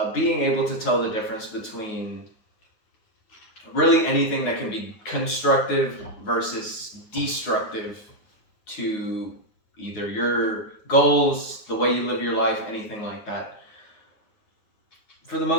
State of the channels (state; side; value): late; right; 9.8 ms